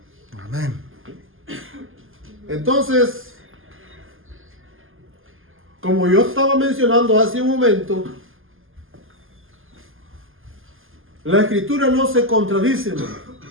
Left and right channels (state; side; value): late; left; 0.59 ms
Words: Amén. Entonces, como yo estaba mencionando hace un momento, la escritura no se contradice, hermano.